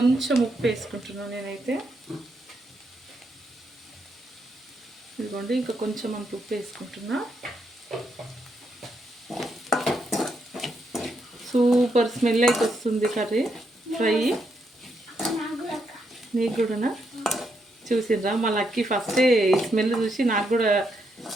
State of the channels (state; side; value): normal; both; correlation 0.79